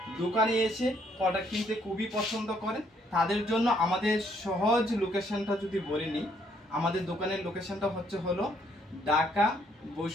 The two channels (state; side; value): normal; both; correlation 0.68